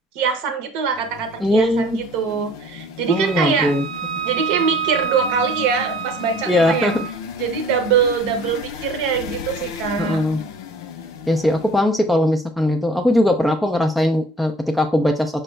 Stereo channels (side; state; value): both; normal; correlation 0.50